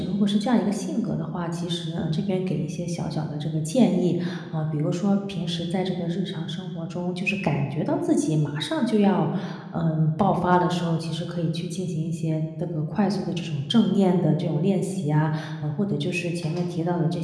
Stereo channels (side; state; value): both; identical; correlation 1.00